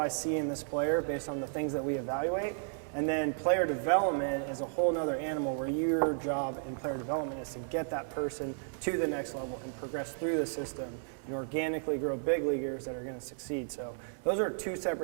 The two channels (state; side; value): silent; left; digital silence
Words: see in this player based on the things that we evaluate. And then player development is a whole nother animal where your job in player development is to get that person to the next level and progress through the system and organically grow big leaguers that are going to succeed. So those are two